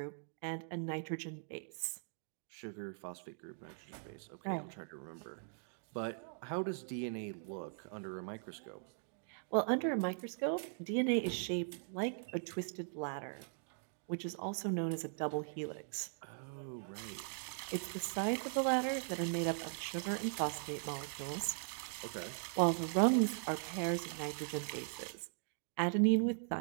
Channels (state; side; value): silent; left; digital silence